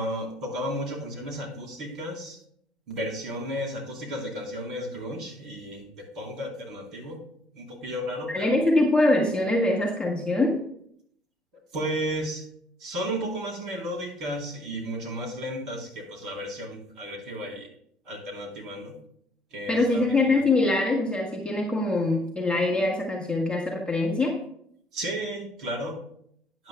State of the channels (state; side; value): normal; both; correlation 0.65